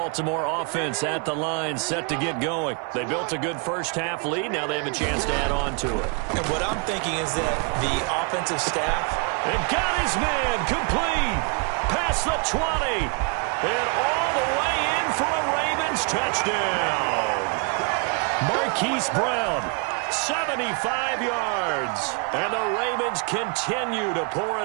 offense at the line, set to get going. They built a good first-half lead. Now they have a chance to add on to it. And what I'm thinking is that the offensive staff... And got his man complete. Past the 20. And all the way in for a Ravens touchdown. Marquise Brown, 75 yards. And the Ravens continue to pour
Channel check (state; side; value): quieter; left; 35.8 dB